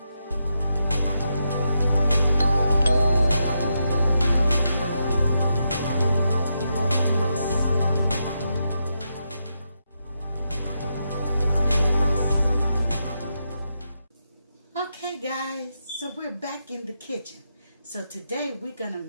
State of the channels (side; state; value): both; inverted; correlation -0.83